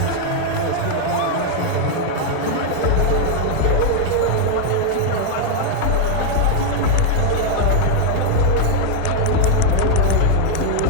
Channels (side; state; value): both; different; correlation 0.00